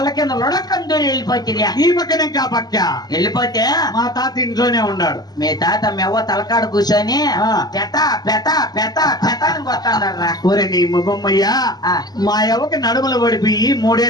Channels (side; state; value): right; late; 0.19 ms